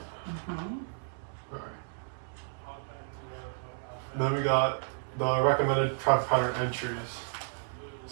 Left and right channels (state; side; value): silent; left; 56 dB below the other